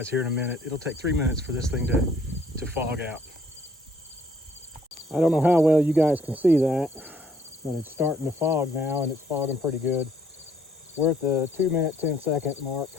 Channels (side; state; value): both; normal; correlation 0.63